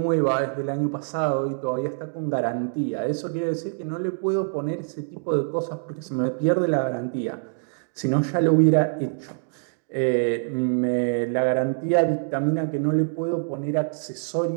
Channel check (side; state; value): left; silent; digital silence